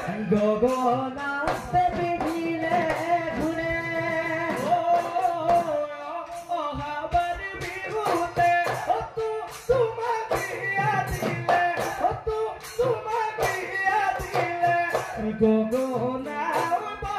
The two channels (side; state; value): both; identical; correlation 1.00